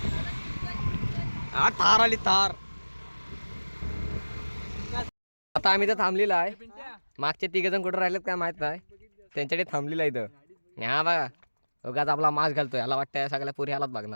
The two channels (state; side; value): inverted; both; correlation -1.00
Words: हा थार आली थार. आता आम्ही तर थांबलेला आहे. मागचे 3 जण कुठं राहिलेत काय माहित नाही. त्यांच्याकडे थांबलेला आहे इथं. हा बघा, उगाच आपला मास्क घालतोय. याला वाटतं सगळ्या पुरी ह्यालाच